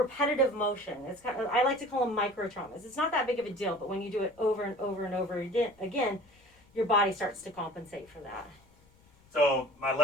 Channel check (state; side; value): noise; left; rumble, 29 dB below the sound